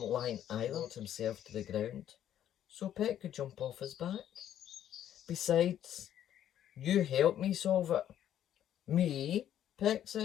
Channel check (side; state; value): right; quieter; 10.8 dB